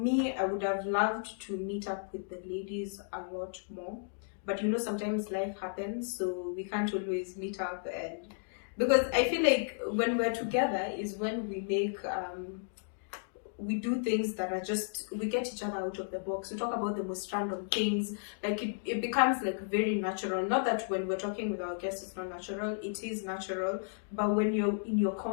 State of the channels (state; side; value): silent; right; digital silence